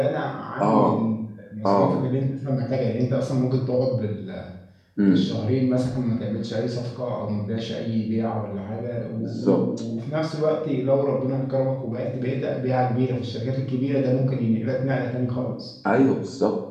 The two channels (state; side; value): identical; both; correlation 1.00